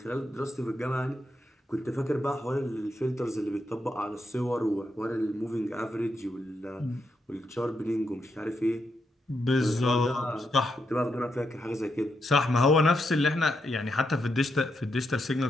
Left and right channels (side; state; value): both; normal; correlation 0.82